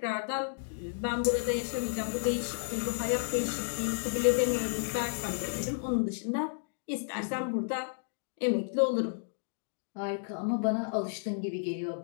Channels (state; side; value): silent; right; digital silence